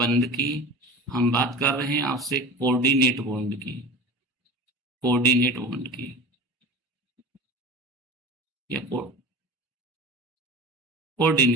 की, हम बात कर रहे हैं आपसे कोऑर्डिनेट बॉन्ड की, कोऑर्डिनेट बॉन्ड की या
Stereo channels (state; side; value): normal; both; correlation 0.34